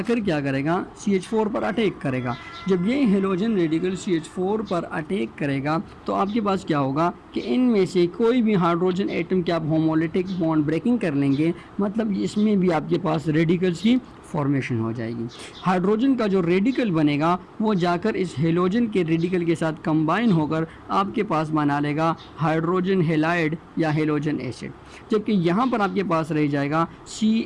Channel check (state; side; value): identical; both; correlation 1.00